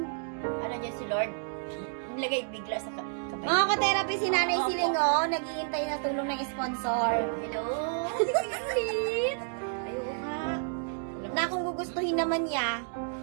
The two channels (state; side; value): silent; left; digital silence